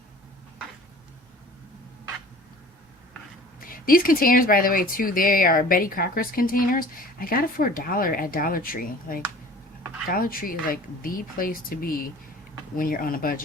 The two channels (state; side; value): normal; both; correlation 0.45